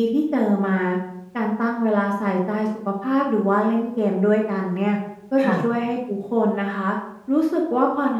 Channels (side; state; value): both; identical; correlation 1.00